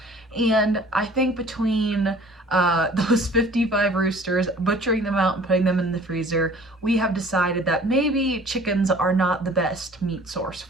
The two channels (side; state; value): both; normal; correlation 0.50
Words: And I think between those 55 roosters, butchering them out and putting them in the freezer, we have decided that maybe chickens are not the best meat source